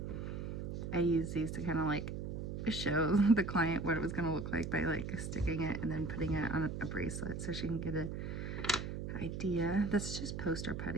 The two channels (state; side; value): noise; right; hum, 5 dB below the sound